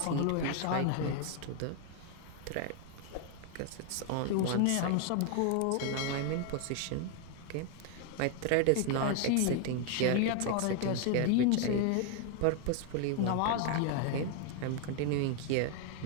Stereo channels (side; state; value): both; different; correlation 0.00